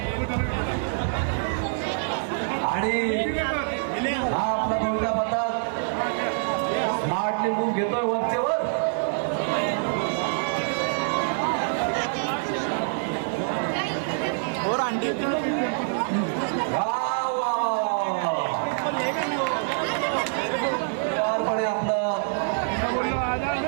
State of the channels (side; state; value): left; silent; 58 dB below the other